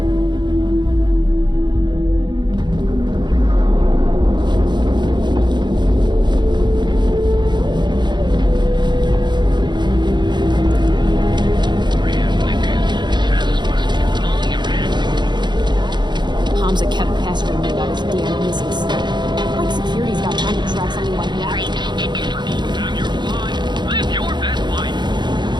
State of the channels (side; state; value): left; late; 0.21 ms